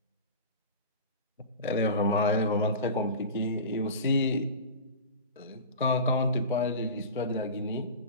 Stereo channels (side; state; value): both; inverted; correlation -0.32